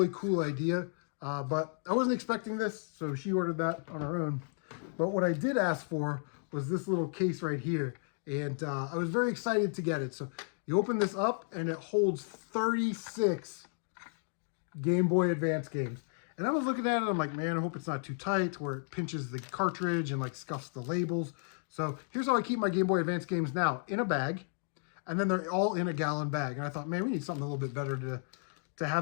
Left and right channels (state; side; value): silent; right; 56 dB below the other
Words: cool idea, but I wasn't expecting this, so she ordered that on her own. But what I did ask for was this little case right here, and I was very excited to get it. So you open this up, and it holds 36 Game Boy Advance games. And I was looking at it, I'm like, man, I hope it's not too tight where it pinches the cartridge and like scuffs the labels. So here's how I keep my Game Boy Advance games now, in a bag, and then they're all in a gallon bag. And I thought, man, we need something a little bit better to